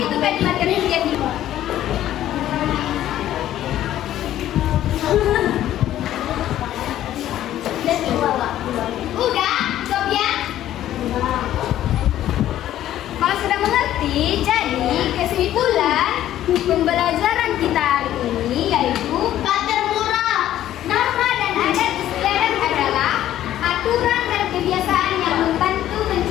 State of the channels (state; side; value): quieter; right; 12.6 dB